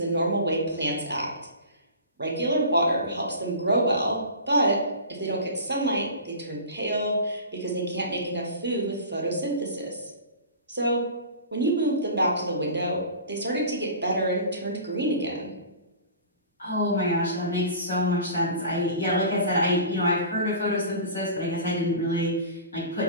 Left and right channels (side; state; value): both; inverted; correlation -0.37